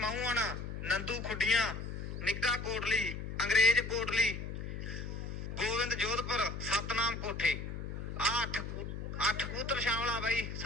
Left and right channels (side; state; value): left; noise; hum, 6 dB below the sound